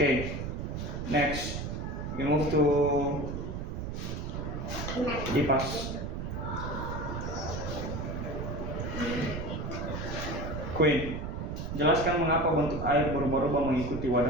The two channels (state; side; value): noise; right; rumble, 4 dB below the sound